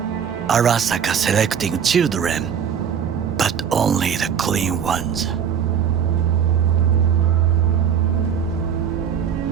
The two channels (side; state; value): left; quieter; 8.0 dB